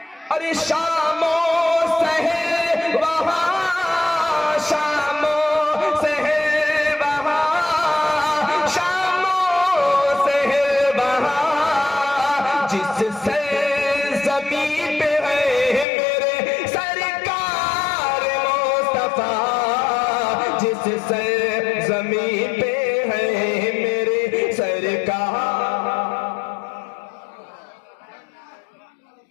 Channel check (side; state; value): right; drops out; at 15.9 s